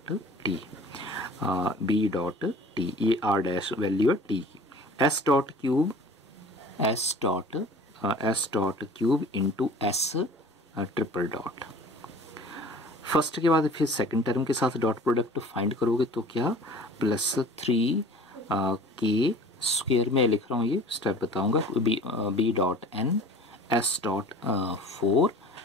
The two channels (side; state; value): both; normal; correlation 0.44